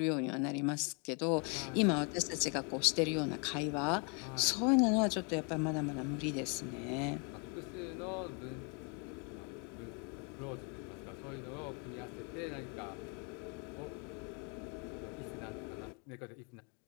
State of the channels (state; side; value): quieter; right; 35.6 dB